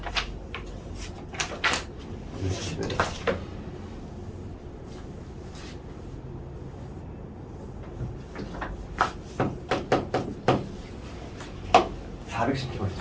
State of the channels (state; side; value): identical; both; correlation 1.00